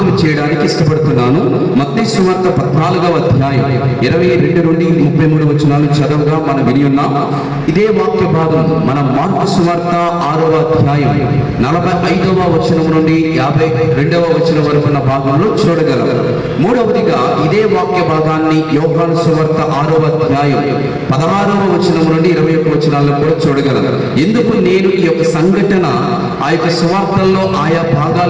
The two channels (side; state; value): both; identical; correlation 1.00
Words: చేయడానికి ఇష్టపడుతున్నాను. మత్తయి సువార్త 14వ అధ్యాయం 22 నుండి 33 వచనాలు చదవగా మనం విని ఉన్నాం. ఇదే వాక్య భాగం మన మార్కు సువార్త 6వ అధ్యాయం 45వ వచనం నుండి 52వ వచనం వరకు ఉన్న భాగంలో చూడగలం. మూడవదిగా ఇదే వాక్య భాగాన్ని యోహాను సువార్త 6వ అధ్యాయం 16వ వచనం నుండి 21 వచనాలను కూడా చూడగలం. ఎందుకు నేను ఈ యొక్క సంఘటన ఆ యొక్క సువార్తల్లో ఆయా